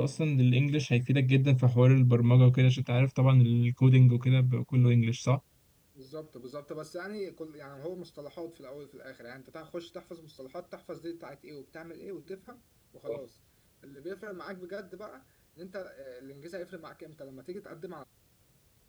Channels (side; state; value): both; identical; correlation 1.00